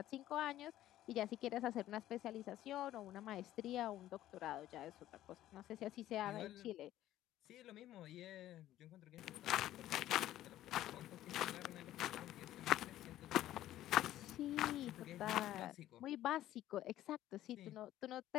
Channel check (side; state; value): right; quieter; 13.6 dB